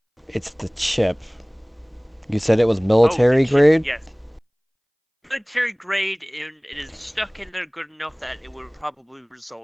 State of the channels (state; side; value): identical; both; correlation 1.00